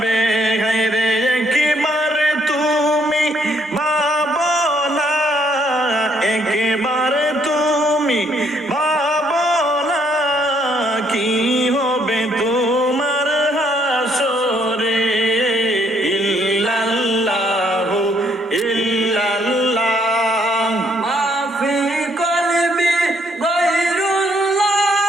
হায়রে একেবারে তুমি ভাবো না একেবারে তুমি ভাবো না কি হবে তোমার হাসরে ইল্লাল্লাহু ইল্লাল্লাহ মা ফি কলবি গায়রুল্লাহ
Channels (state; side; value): normal; both; correlation 0.69